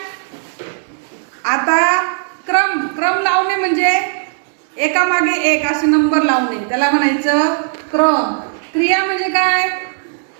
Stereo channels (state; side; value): silent; left; digital silence